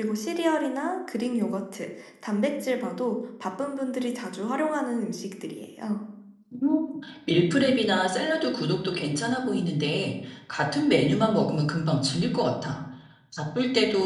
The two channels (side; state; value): both; identical; correlation 1.00